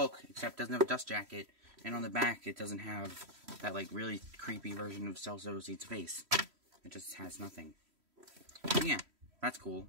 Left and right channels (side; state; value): left; late; 3.1 ms